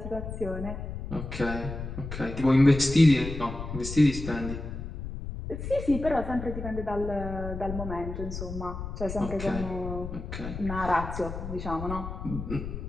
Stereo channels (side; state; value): left; noise; rumble, 7 dB below the sound